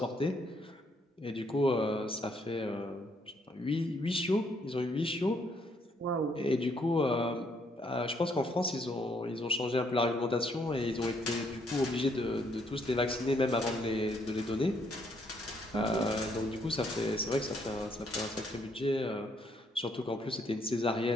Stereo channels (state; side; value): normal; both; correlation 0.70